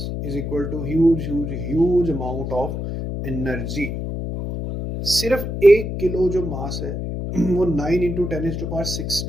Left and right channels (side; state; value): left; noise; hum, 4 dB below the sound